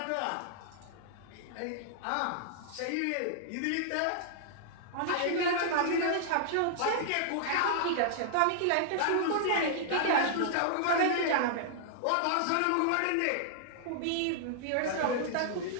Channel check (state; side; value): different; both; correlation -0.01